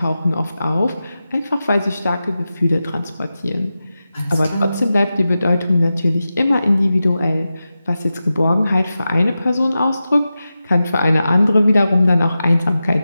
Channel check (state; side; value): inverted; both; correlation -0.93